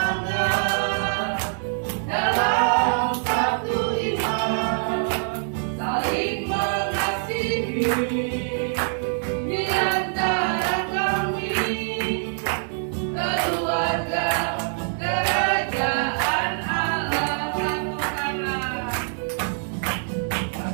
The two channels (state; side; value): silent; left; digital silence